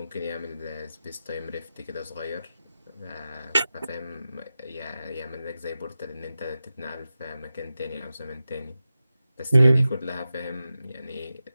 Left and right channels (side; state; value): both; inverted; correlation -0.93